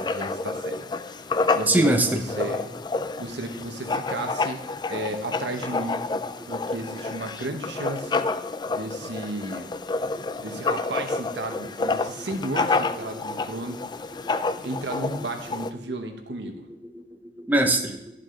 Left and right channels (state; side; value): normal; both; correlation 0.37